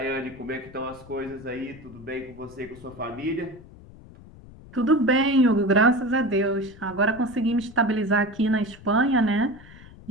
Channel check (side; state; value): left; noise; rumble, 20 dB below the sound